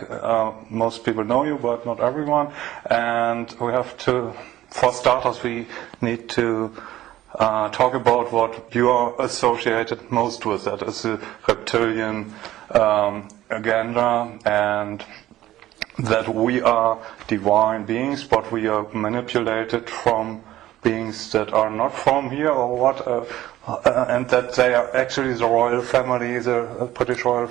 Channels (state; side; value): quieter; left; 14.5 dB